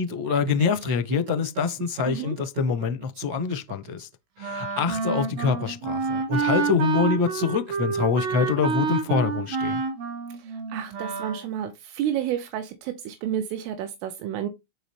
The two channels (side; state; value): left; late; 16 ms